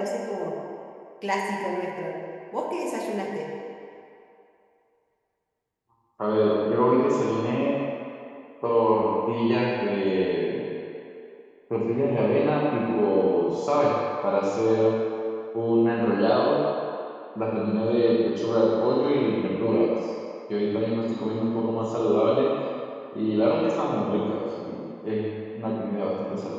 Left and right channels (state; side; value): identical; both; correlation 1.00